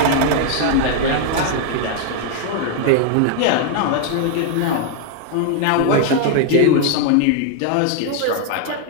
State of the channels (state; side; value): different; both; correlation 0.00